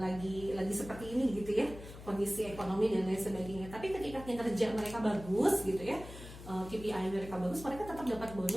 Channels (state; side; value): noise; left; hum, 14 dB below the sound